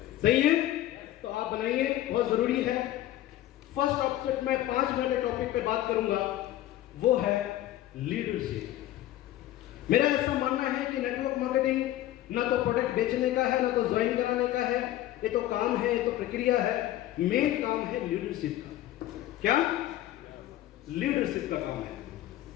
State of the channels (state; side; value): quieter; right; 14.0 dB